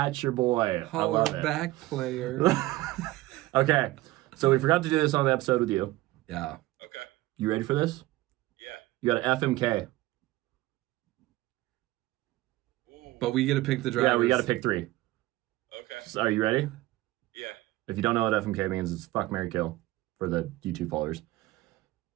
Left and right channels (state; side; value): quieter; left; 18.1 dB